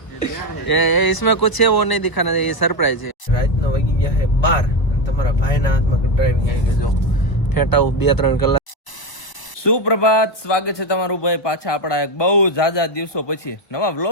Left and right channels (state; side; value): late; right; 1.0 ms